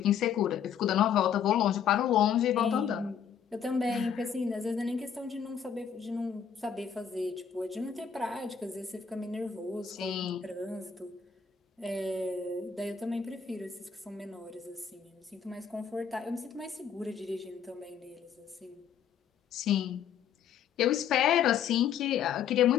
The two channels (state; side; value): quieter; right; 7.8 dB